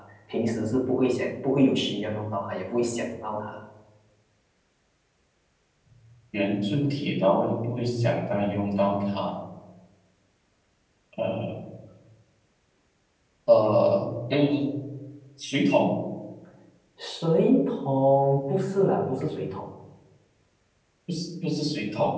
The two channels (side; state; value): both; identical; correlation 1.00